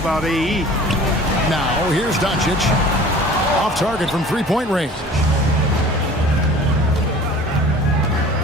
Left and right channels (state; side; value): normal; both; correlation 0.45